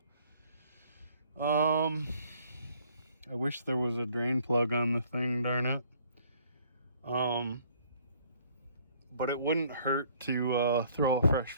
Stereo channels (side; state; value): both; inverted; correlation -0.60